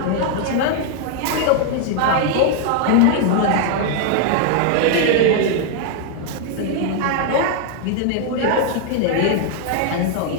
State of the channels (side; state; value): both; different; correlation 0.00